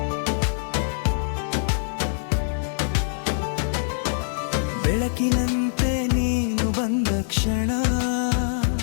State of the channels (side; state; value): right; silent; digital silence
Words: ಬೆಳಕಿನಂತೆ ನೀನು ಬಂದ ಕ್ಷಣ,